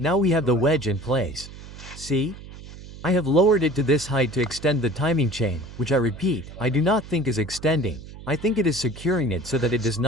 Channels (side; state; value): right; noise; hum, 15 dB below the sound